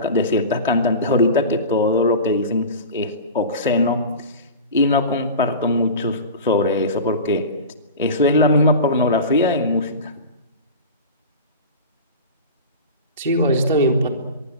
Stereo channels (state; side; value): inverted; both; correlation -0.31